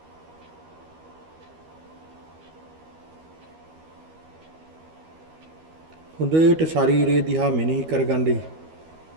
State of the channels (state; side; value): late; left; 12 ms